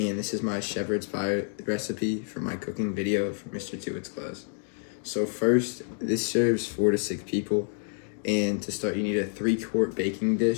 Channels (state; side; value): silent; right; 59 dB below the other